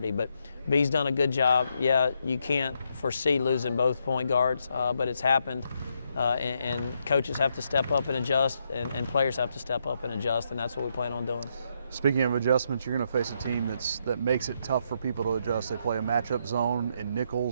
But B's done a good job. Yeah, you can't foresee losing both point guards, but it's happened. And coaches have to step up and adjust, and players have to step up and adjust, and that's what we plan on doing. Speaking of adjustments, you're going to face a team that makes it tough for people to adjust. They play a matchup zone in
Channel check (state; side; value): inverted; both; correlation -0.78